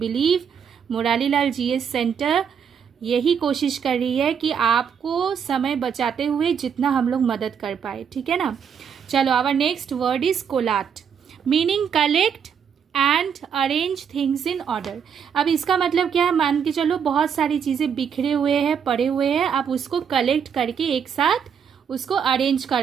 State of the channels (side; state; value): left; quieter; 7.3 dB